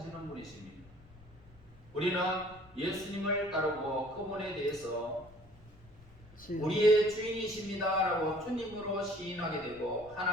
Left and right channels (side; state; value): left; noise; rumble, 23 dB below the sound